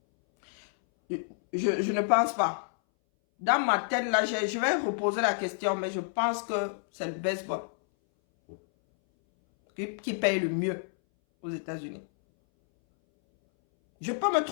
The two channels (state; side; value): silent; right; 59 dB below the other